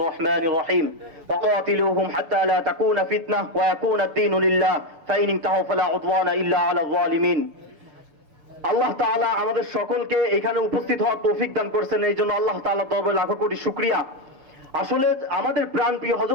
রহমানির রহিম। ফাকাতিলুহুম হাত্তা লা তাকুনা ফিতনাহ ওয়া ইয়াকুনা আদ-দীনু লিল্লাহ ফাইন ইনতাহু ফালা উদওয়ানা ইল্লা আলাল যালিমিন। আল্লাহ তাআলা আমাদের সকলকে এখানে উপস্থিত হওয়ার তৌফিক দান করেছেন, এই জন্য আল্লাহ তাআলার দরবারে লাখো কোটি শুকরিয়া। আসলে আমাদের প্রাণপ্রিয়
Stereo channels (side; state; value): left; late; 6.9 ms